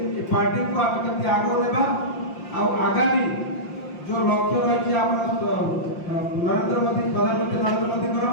पार्टी को आम केमती आगो नेबा आगामी जो लक्ष्य रही नरेंद्र मोदी प्रधानमंत्री नरेंद्र मोदी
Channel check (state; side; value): late; right; 5.7 ms